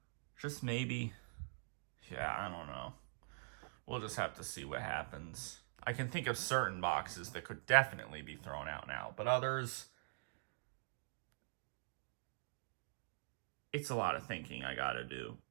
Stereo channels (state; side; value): silent; left; digital silence